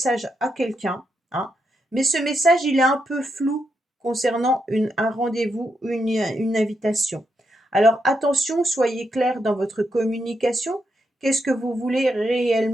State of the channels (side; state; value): both; normal; correlation 0.82